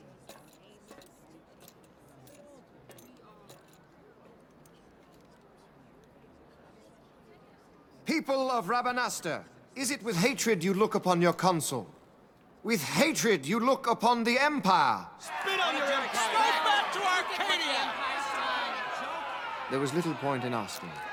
People of Rabanastre, is it with hatred you look upon your consul? With hatred you look upon the Empire? Spit on your empire! Strike back to Arcadia! There was little point in asking.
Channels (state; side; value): identical; both; correlation 1.00